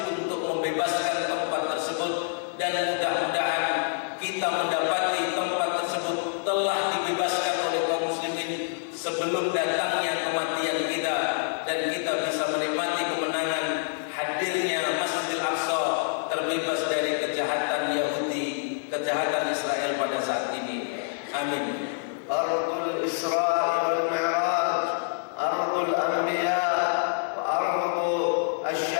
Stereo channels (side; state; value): right; silent; digital silence